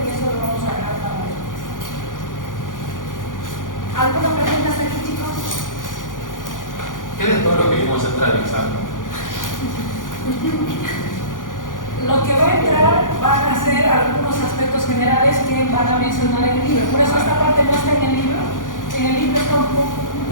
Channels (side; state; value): right; late; 0.88 ms